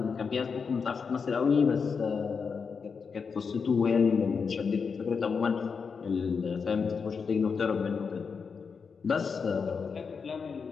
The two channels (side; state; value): right; quieter; 5.6 dB